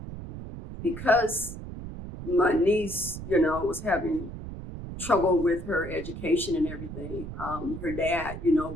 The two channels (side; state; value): right; noise; rumble, 9 dB below the sound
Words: because my niece, you know, was having trouble with her education and everything, her dad, you know,